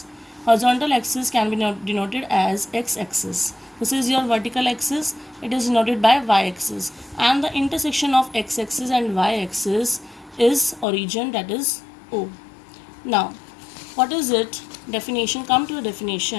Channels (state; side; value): drops out; right; at 10.9 s